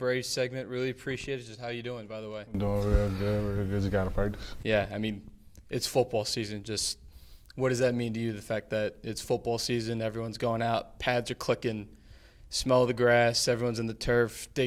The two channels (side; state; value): both; identical; correlation 1.00